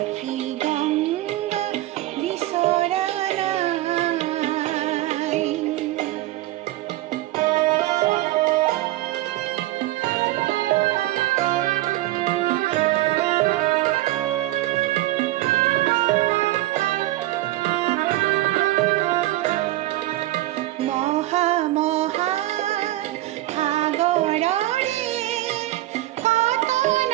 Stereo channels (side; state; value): left; quieter; 16.4 dB